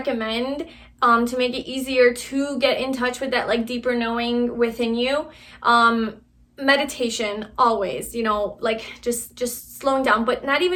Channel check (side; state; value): both; identical; correlation 1.00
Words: to make it easier to get in touch with that like deeper knowing within you, meditation always, you know, like just slowing down, but not